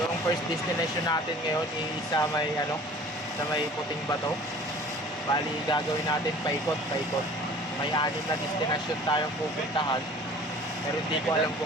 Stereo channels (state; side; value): normal; both; correlation 0.47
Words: yung first destination natin ngayon is sa may Puting Bato. Bali gagawin natin paikot. May 6 na destination tayong pupuntahan, pero hindi ko alam